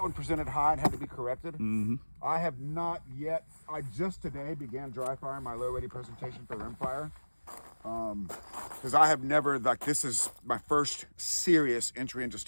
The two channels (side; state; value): both; inverted; correlation -1.00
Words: one presented high and had to be corrected. Mm-hmm. I have not yet. I just today began dry firing my low ready presentation for rimfire. Because I have never, this is my first serious entry into